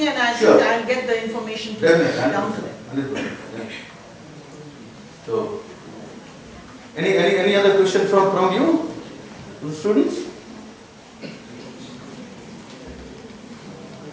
and Sure. I'll get the information to Definitely, down to them. 100%. So, any other question from you, the students?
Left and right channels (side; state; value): both; identical; correlation 1.00